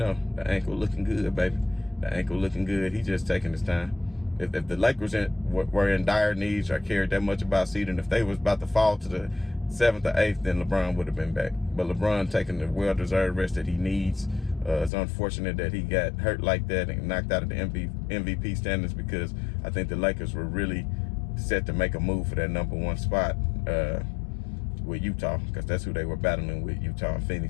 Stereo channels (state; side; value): drops out; right; at 14.9 s